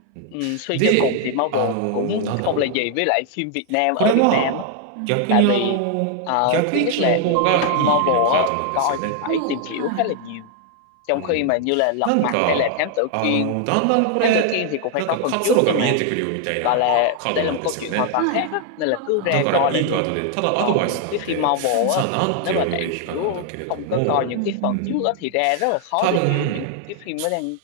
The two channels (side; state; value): both; different; correlation 0.00